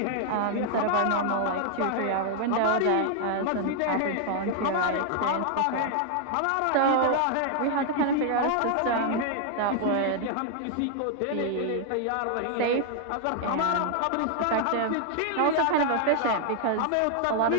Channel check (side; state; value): both; different; correlation 0.00